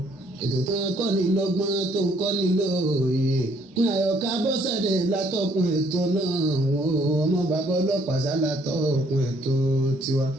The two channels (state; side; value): normal; both; correlation 0.65